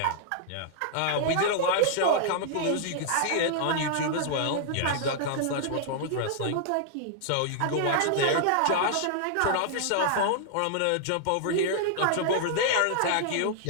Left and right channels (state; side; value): different; both; correlation -0.01